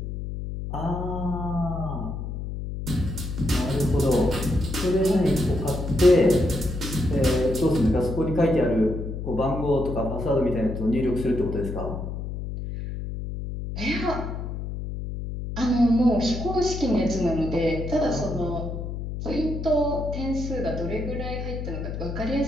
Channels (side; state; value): left; noise; hum, 6 dB below the sound